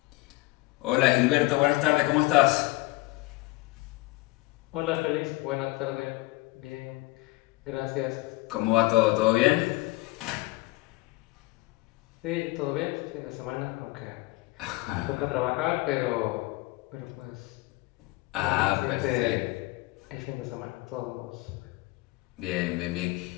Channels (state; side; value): quieter; right; 21.0 dB